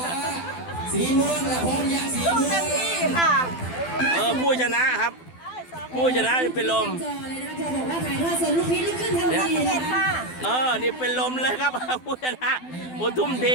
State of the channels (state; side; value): late; right; 12 ms